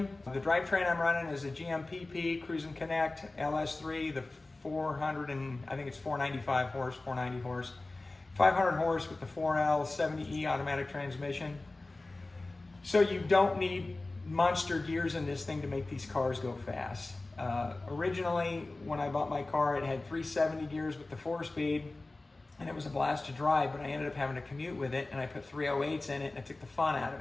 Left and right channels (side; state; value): right; quieter; 3.1 dB